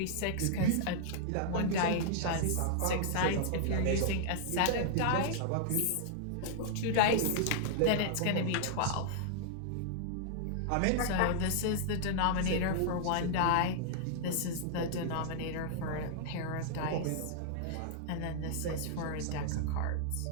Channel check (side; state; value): both; different; correlation -0.01